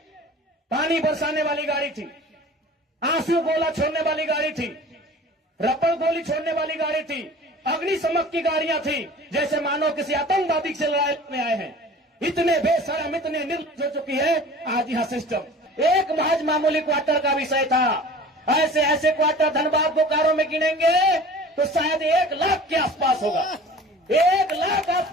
पानी बरसाने वाली गाड़ी थी, आंसू गोला छोड़ने वाली गाड़ी थी, रबर गोली छोड़ने वाली गाड़ी थी, अग्निशमक की गाड़ियां थी, जैसे मानो किसी आतंकवादी से लड़ाई में आए हैं। इतने बेशरम, इतने निर्लज्ज हो चुकी है आज यहाँ सिस्टम। एक महज मामूली क्वार्टर का विषय था, ऐसे ऐसे क्वार्टर धनबाद बोकारो में गिनेंगे तो शायद 1 लाख के आसपास होगा, 1 लाख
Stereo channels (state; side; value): normal; both; correlation 0.42